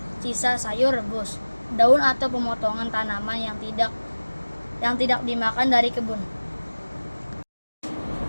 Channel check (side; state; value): both; inverted; correlation -1.00